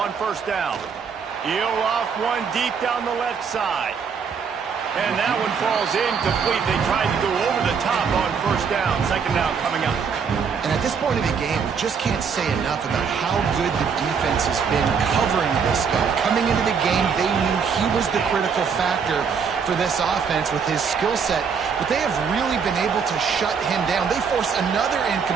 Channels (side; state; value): left; quieter; 6.2 dB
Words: 1st down. He'll off one deep down the left side. And that one falls incomplete. They tried to go over the top on 1st down. 2nd down coming up. And at this point of the game, we just can't say enough about how good the defense has been covering this guy. Coming into the game, they knew he was the critical factor for this offense with his skill set. But they have really been able to shut him down. They force another